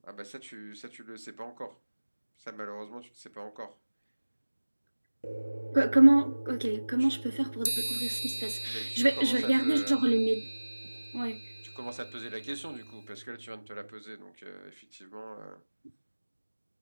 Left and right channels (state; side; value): inverted; both; correlation -1.00